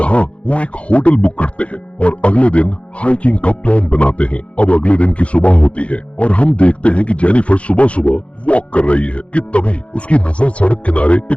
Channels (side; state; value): right; late; 0.062 ms